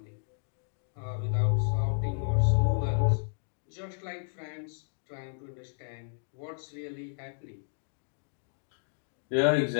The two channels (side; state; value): right; silent; digital silence